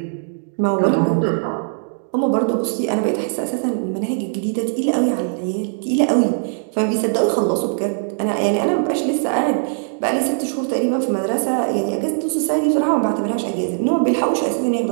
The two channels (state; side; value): silent; left; digital silence